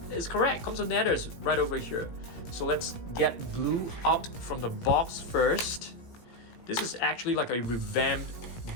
it's correct, Compsognathus right over here. So let's get Blue out from the box first. This is actually like a revamped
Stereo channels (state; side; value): late; right; 17 ms